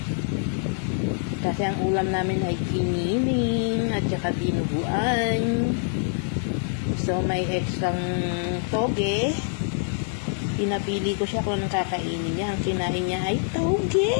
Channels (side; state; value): right; silent; digital silence